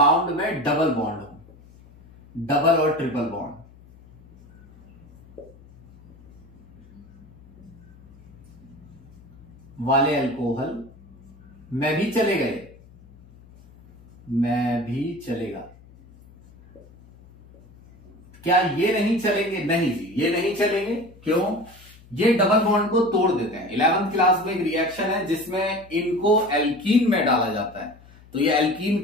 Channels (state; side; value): noise; left; hum, 24 dB below the sound